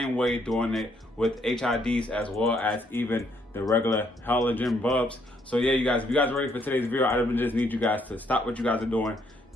way, doing it with HIDs as well as even the regular halogen bulbs. So yeah, you guys, if you guys are ready for today's video, I just need you guys to stop what you guys are doing,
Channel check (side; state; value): both; normal; correlation 0.71